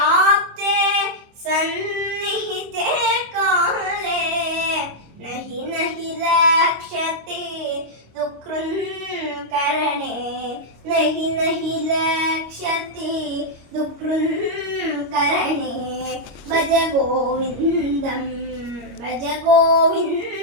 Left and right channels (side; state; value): left; late; 25 ms